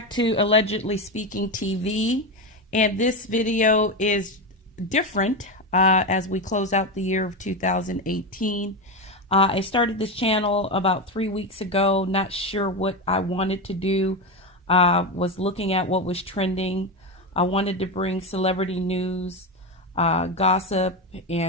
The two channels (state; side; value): normal; both; correlation 0.15